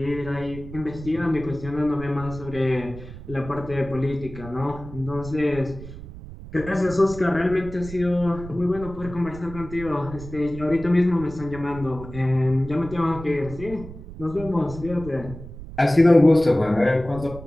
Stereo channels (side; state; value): right; noise; rumble, 13 dB below the sound